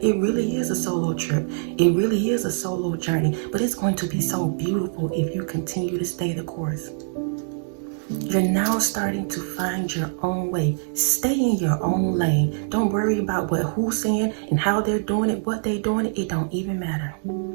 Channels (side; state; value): left; silent; digital silence